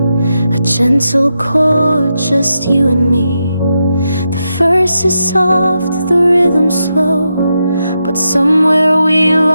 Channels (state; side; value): inverted; both; correlation -0.86